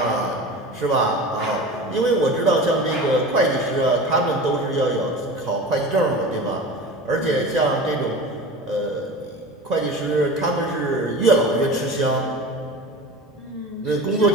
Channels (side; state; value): both; normal; correlation 0.34